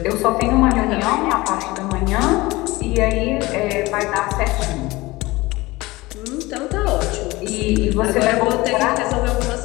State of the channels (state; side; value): quieter; right; 20.7 dB